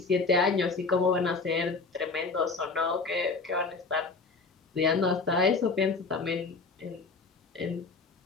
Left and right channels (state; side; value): quieter; right; 4.2 dB